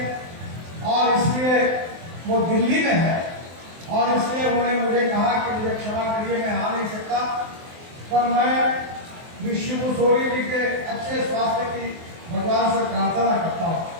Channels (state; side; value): late; left; 23 ms